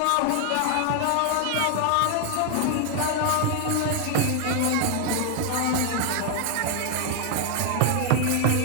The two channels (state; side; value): different; both; correlation 0.00